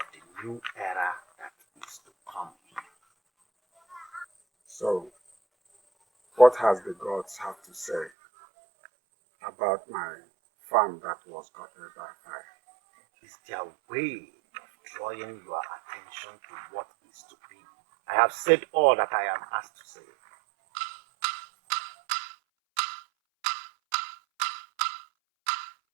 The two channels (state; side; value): drops out; left; at 8.1 s